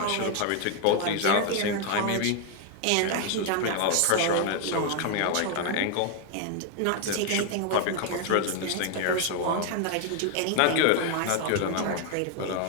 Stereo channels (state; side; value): different; both; correlation 0.01